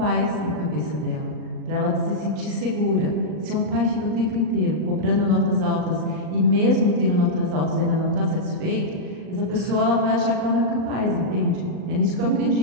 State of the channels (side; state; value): left; late; 39 ms